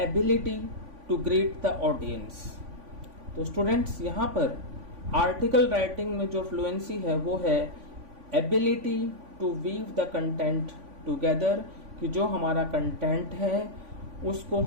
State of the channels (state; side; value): late; left; 3.5 ms